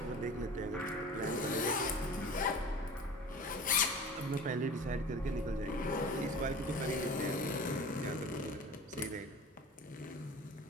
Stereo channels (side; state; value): both; normal; correlation 0.39